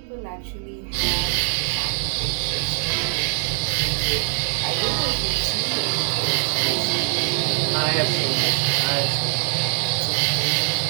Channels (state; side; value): silent; left; 64 dB below the other